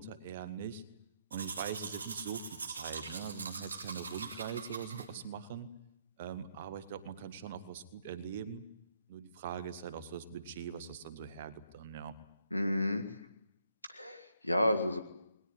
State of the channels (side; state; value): both; inverted; correlation -0.74